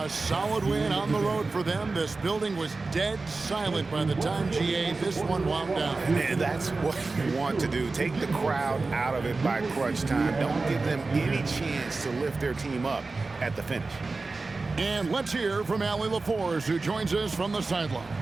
solid win on the road for them. This building was dead silent by the time, GA, this one wound down. And that's what you want to do. Take the crowd out of it by crunch time. Don't give them any chance to lift their team up at the finish. And let's hear from Allie LaForce, who joins us from the sidelines.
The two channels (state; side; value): quieter; left; 3.7 dB